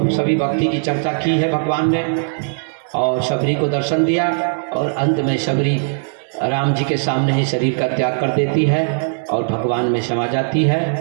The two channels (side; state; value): left; silent; digital silence